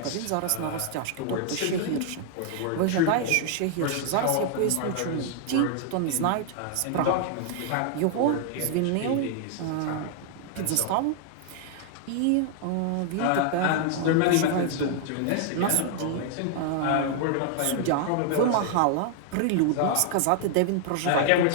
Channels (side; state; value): both; different; correlation 0.00